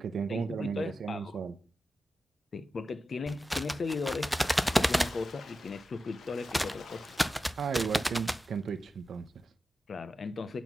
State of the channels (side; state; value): both; normal; correlation 0.91